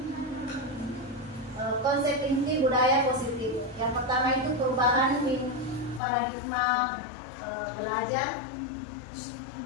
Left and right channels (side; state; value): right; drops out; at 6.0 s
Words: konsep inti budaya positif. Yang pertama itu perubahan paradigma belajar.